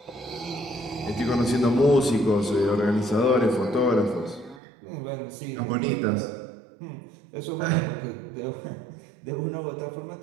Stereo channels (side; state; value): left; drops out; at 4.6 s